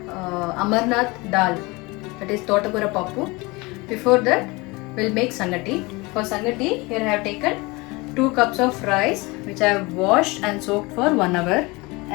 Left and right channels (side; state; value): right; quieter; 24.5 dB